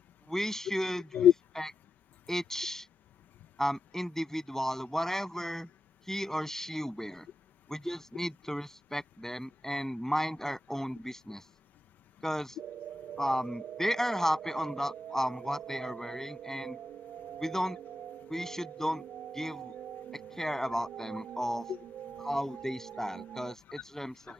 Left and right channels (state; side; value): normal; both; correlation 0.88